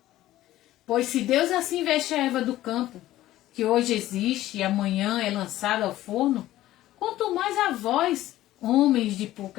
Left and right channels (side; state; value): right; quieter; 14.8 dB